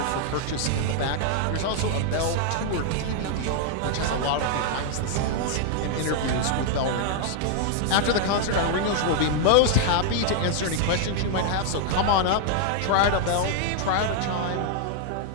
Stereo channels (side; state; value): both; different; correlation 0.00